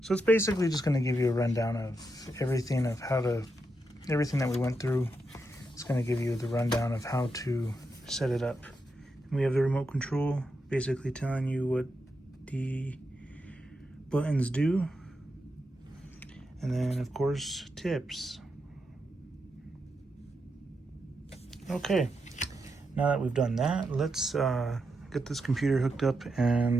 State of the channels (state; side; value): normal; both; correlation 0.85